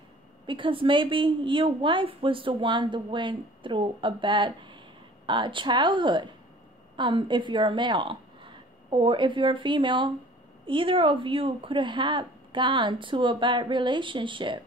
because maybe your wife was the one that went through a bad childhood. If you're a male, or if you're a female, either of you could have gone to a bad relationship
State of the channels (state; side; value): normal; both; correlation 0.49